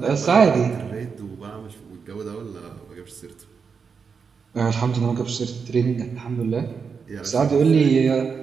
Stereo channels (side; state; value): left; quieter; 5.8 dB